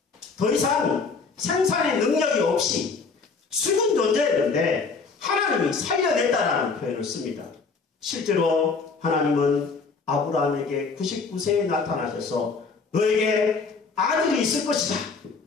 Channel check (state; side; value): quieter; right; 4.7 dB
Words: 더 이상 생산의 능력이 없이 죽은 존재였는데 하나님이 살려냈다라는 표현을 씁니다. 실제로 하나님은 아브라함에게 99세에 나타나셔서 너에게 아들이 있을 것이다.